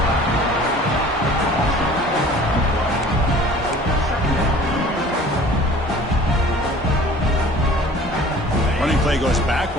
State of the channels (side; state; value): both; normal; correlation 0.48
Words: Running play goes